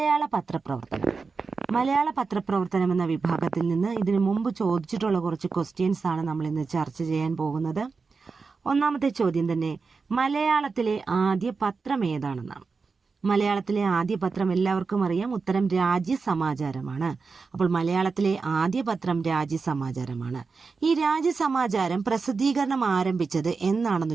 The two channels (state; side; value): quieter; left; 4.6 dB